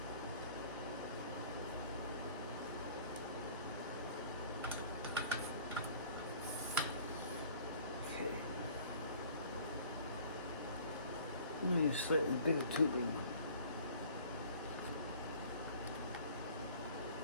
Okay. I'm going to use slightly bigger tubing.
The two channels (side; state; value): both; inverted; correlation -0.50